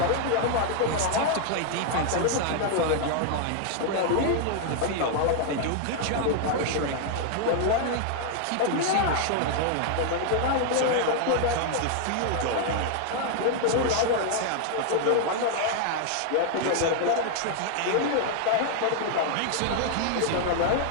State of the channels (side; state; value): both; different; correlation 0.00